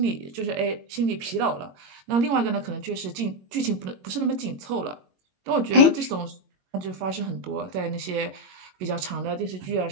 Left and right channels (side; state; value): left; late; 22 ms